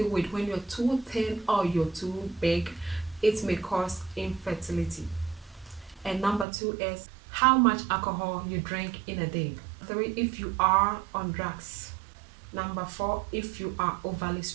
weight, when you're too thin or you're too big, it may cause infertility. And number two is how much alcohol you drink in a day. 3, if you are on drugs. Number 4, if you are overly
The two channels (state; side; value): drops out; left; at 6.5 s